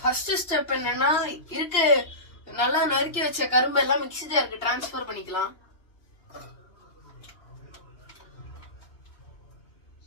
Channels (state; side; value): late; right; 2.9 ms